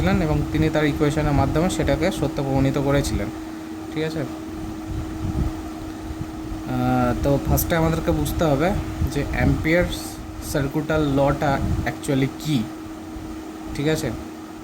এবং তিনি তার ইকুয়েশনের মাধ্যমে সেটাকে সত্য প্রমাণিত করেছিলেন। ঠিক আছে? তো ফার্স্টে আমাদেরকে বুঝতে হবে যে অ্যাম্পিয়ারস সার্কিটাল লটা অ্যাকচুয়ালি কী। ঠিক আছে?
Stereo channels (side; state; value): both; identical; correlation 1.00